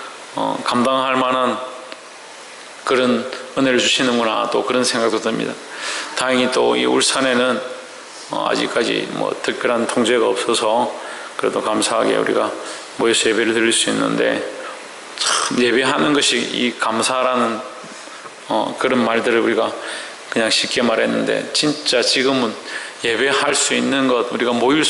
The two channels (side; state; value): both; identical; correlation 1.00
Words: 감당할 만한 그런 은혜를 주시는구나, 또 그런 생각도 듭니다. 다행히 또 이 울산에는 아직까지 특별한 통제가 없어서 그래도 감사하게 우리가 모여서 예배를 드릴 수 있는데, 참 예배하는 것이 이 감사라는 그런 말들을 우리가 그냥 쉽게 말했는데, 진짜 지금은 예배할 수 있는 것, 우리가 모일